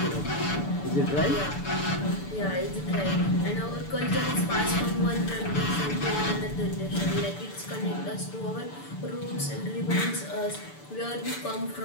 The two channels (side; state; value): right; late; 6.8 ms